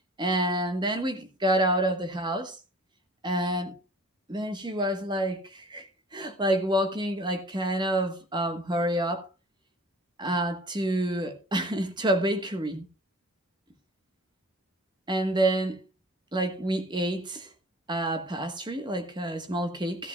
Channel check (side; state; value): both; normal; correlation 0.47